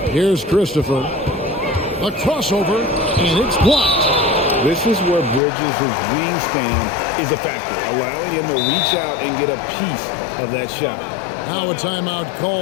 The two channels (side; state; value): right; drops out; at 5.4 s